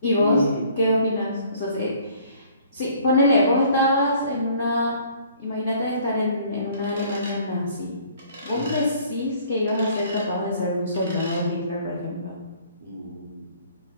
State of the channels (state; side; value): inverted; both; correlation -0.56